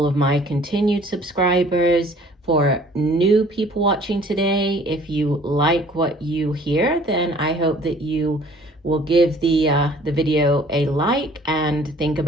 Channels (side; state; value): both; normal; correlation 0.54